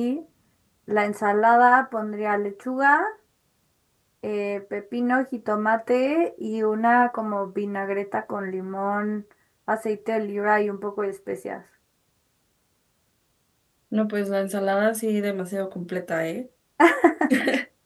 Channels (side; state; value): both; identical; correlation 1.00